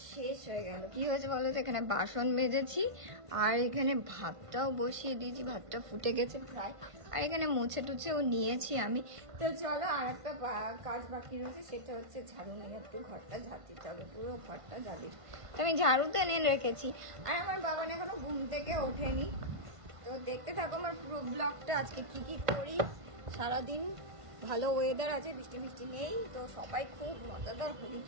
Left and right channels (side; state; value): left; late; 1.5 ms